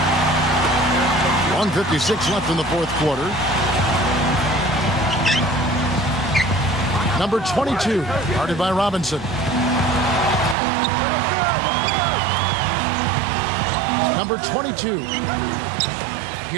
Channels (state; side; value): drops out; left; at 10.6 s